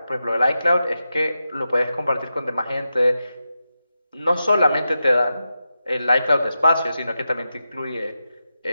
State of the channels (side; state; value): both; inverted; correlation -0.90